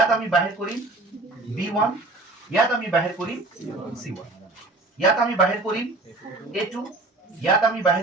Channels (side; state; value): left; quieter; 3.1 dB